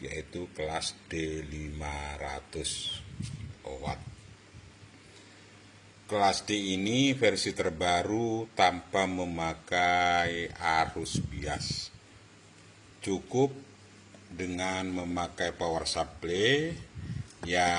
yaitu kelas D500 watt. Kelas D ini versi terbaru tanpa memakai arus bias. Cukup dengan memakai power supply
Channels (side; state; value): both; identical; correlation 1.00